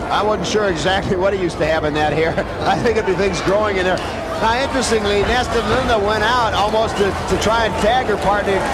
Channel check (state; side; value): identical; both; correlation 1.00